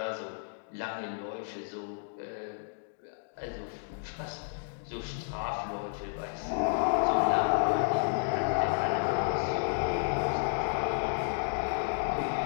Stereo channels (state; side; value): silent; right; digital silence